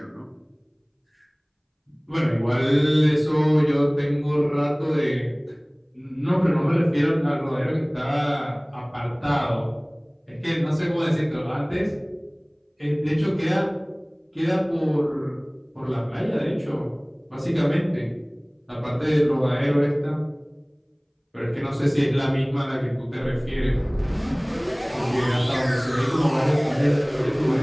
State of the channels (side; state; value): both; identical; correlation 1.00